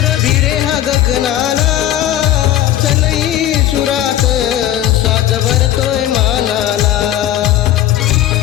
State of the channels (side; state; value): right; quieter; 12.7 dB